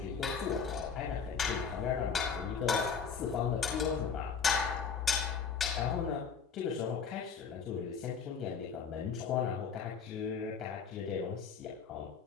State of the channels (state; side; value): quieter; right; 6.2 dB